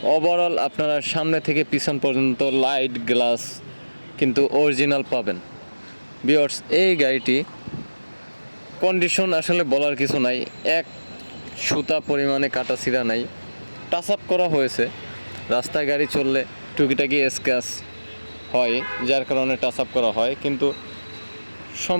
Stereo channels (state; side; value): inverted; both; correlation -1.00